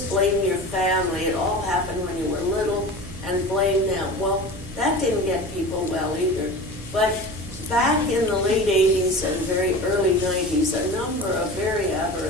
blame your family. It all happened when you were little, and blame them. Well, that didn't get people well either. But back in the late 80s and very early 90s, a number of very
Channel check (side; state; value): right; noise; hum, 16 dB below the sound